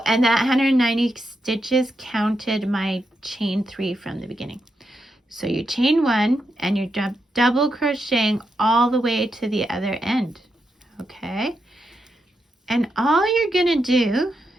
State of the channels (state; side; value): normal; both; correlation 0.84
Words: and that 190 stitches counted my chain 3 from the beginning. So you chain one, and you're double crocheting all the way to the other end. Okay? And all you're going to do,